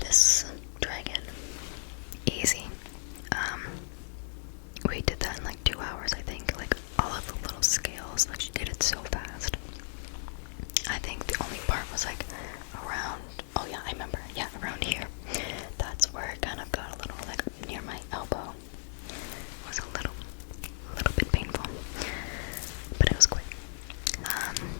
dragon, easy. We did that in like 2 hours, I think. Like all of the little scales, like she did it so fast. I think the only part was like around, oh yeah, I remember, yeah, around here. That's where it kind of got a little like near my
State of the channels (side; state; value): right; silent; digital silence